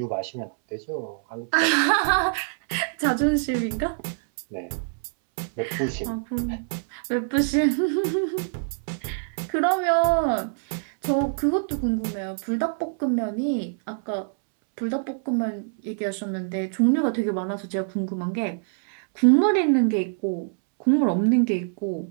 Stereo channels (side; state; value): left; silent; 62 dB below the other